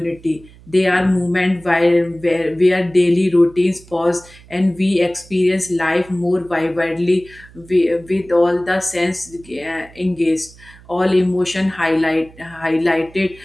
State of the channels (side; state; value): right; noise; hum, 23 dB below the sound